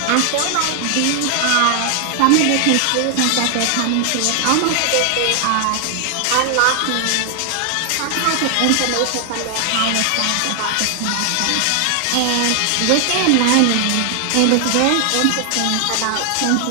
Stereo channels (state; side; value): different; both; correlation 0.00